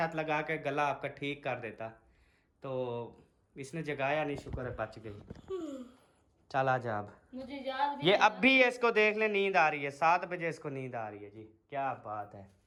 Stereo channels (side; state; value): both; identical; correlation 1.00